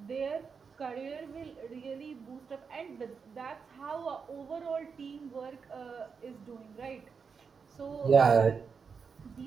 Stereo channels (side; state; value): left; quieter; 5.7 dB